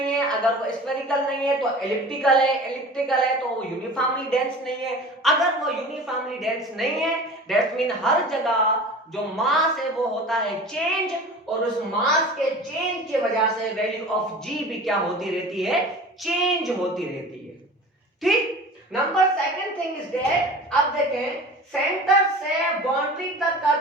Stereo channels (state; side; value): normal; both; correlation 0.38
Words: है, अगर वो स्फेरिकल नहीं है तो एलिप्टिकल है, एलिप्टिकल है तो वो यूनिफॉर्मली डेंस नहीं है। अगर वो यूनिफॉर्मली डेंस नहीं है दैट मीन हर जगह जो मास है वो होता है चेंज, और उस मास के चेंज की वजह से वैल्यू ऑफ G भी क्या होती रहती है? चेंज होती रहती है। ठीक, number second thing is that, अब देखें सेंटर से बाउंड्री तक का